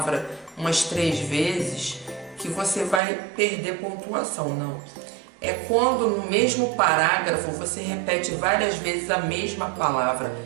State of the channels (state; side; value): drops out; left; at 3.0 s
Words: umas 3 vezes, que você vai perder pontuação, não. É quando no mesmo parágrafo você repete várias vezes a mesma palavra.